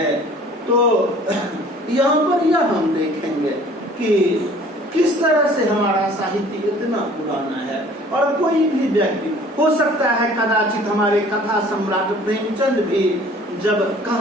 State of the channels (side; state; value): both; normal; correlation 0.51